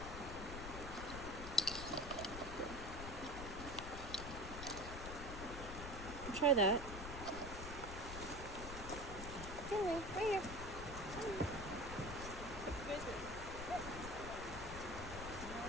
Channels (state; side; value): noise; left; rumble, 7 dB below the sound